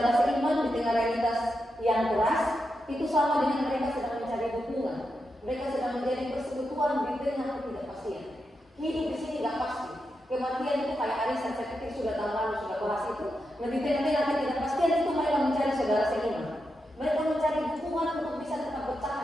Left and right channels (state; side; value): normal; both; correlation 0.86